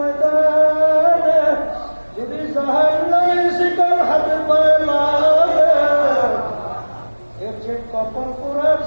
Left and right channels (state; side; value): inverted; both; correlation -1.00